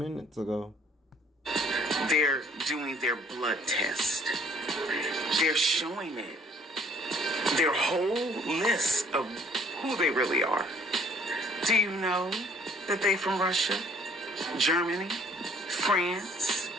ago. They're doing their blood test. They're showing it. Their whole list of who they really are. Do you know that they from Russia, Germany, France,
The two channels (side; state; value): both; normal; correlation 0.59